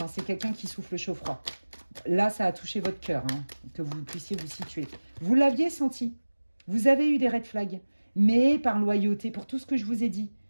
hein, c'est quelqu'un qui souffle chaud-froid. Là, ça a touché votre cœur, hein, que vous puissiez vous situer. Vous l'aviez senti. Vous avez eu des red flags. Mais par loyauté, pour tout ce que je vous ai dit,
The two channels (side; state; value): both; inverted; correlation -1.00